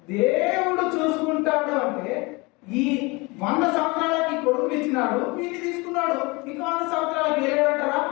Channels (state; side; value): quieter; right; 25.9 dB